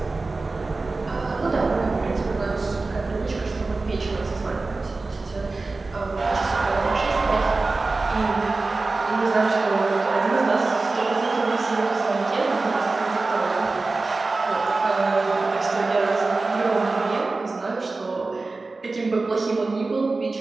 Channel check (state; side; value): quieter; left; 3.6 dB